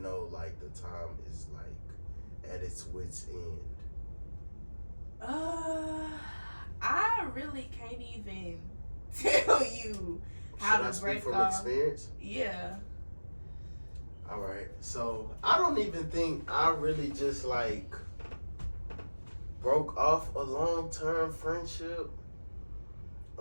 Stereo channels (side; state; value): both; inverted; correlation -1.00